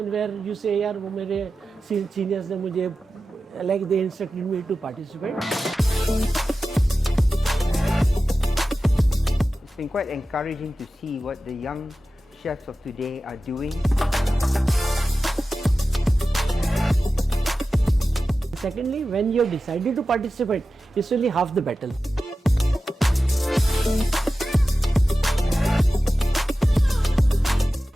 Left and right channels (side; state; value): both; normal; correlation 0.94